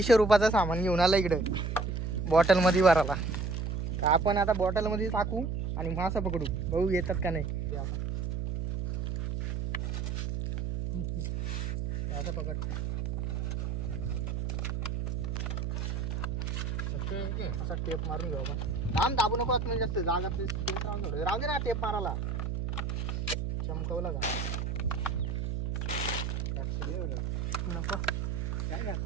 रुपयाचा सामान घेऊन आला इकडं बॉटल मध्ये भरायला तर आपण आता बॉटल मध्ये टाकू आणि मासा पकडू बघू येतात का नाही आता पकड असा टेप मारून घेऊ आपण दाबू नको म्हणजे जास्त जागा राहू दे ना टेप मारायला चमकवला का नको काय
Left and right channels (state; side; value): noise; right; hum, 2 dB below the sound